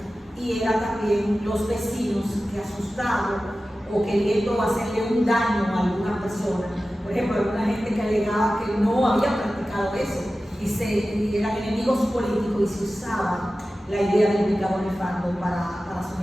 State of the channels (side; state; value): both; normal; correlation 0.95